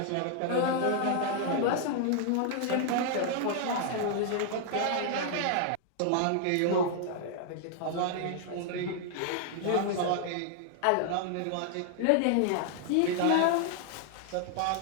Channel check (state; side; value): different; both; correlation 0.00